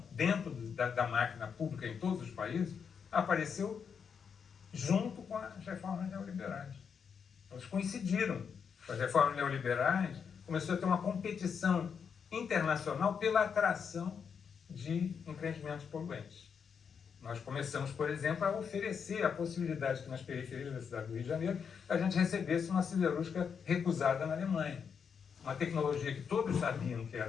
dentro da máquina pública em todos os países apareceu junto com as reformas neoliberais. Elas coincidiram. As reformas neoliberais começou a ter uma competição internacional pela atração de empreendimentos poluentes. Nós começamos, por exemplo, a oferecer a possibilidade que nas periferias da cidade do Rio de Janeiro a gente recebesse uma siderúrgica recusada na Alemanha. Uma tecnologia que todos sabiam que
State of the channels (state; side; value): quieter; right; 6.7 dB